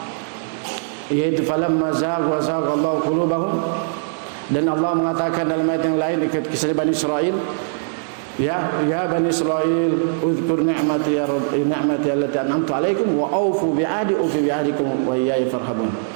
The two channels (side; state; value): left; silent; digital silence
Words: yaitu falamma zagha Allahu qulubahum, dan Allah mengatakan dalam ayat yang lain dekat kisah Bani Israel, ya Bani Israel uzkur ni'mati ya rabbi ni'mati allati an'amtu 'alaikum wa aufu bi'ahdi ufi bi'ahdikum wa iyaya farhabun.